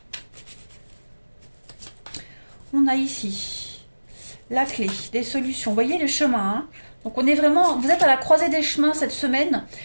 On a ici la clé, des solutions. Vous voyez le chemin. Hein. Donc on est vraiment, vous êtes à la croisée des chemins cette semaine.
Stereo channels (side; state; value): both; inverted; correlation -1.00